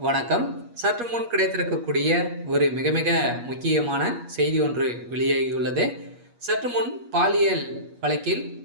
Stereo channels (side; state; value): left; late; 8.4 ms